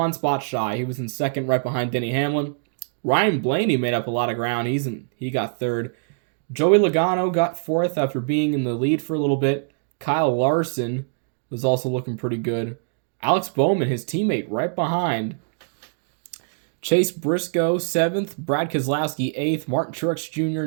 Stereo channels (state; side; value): silent; left; digital silence